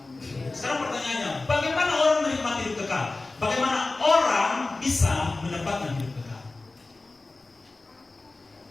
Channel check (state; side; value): quieter; right; 3.3 dB